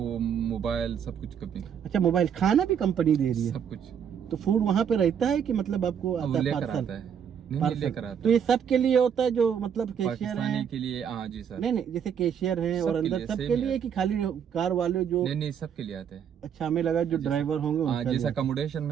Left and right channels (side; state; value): left; quieter; 8.1 dB